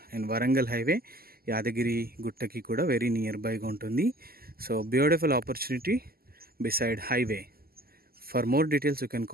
and Warangal highway యాదగిరి గుట్టకి కూడా వెరీ నియర్ బైగా ఉంటుంది. So beautiful opportunity beside highway. For more details you can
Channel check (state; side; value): late; left; 0.44 ms